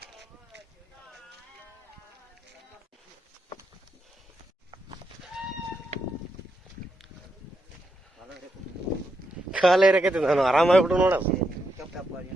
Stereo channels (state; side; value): normal; both; correlation 0.82